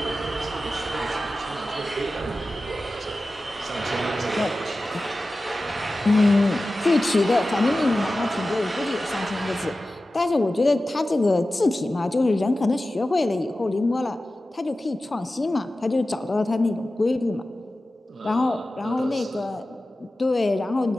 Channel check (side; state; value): both; normal; correlation 0.95